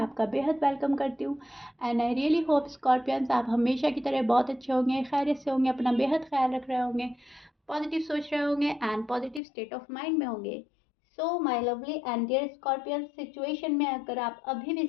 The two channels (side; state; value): right; drops out; at 9.4 s